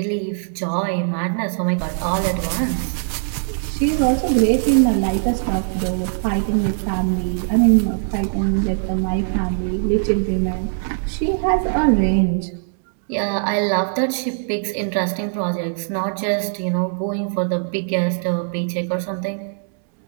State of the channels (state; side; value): silent; left; 65 dB below the other